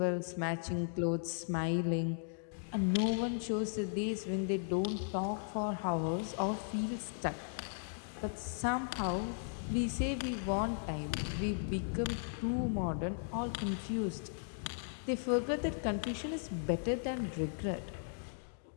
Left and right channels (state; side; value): silent; right; digital silence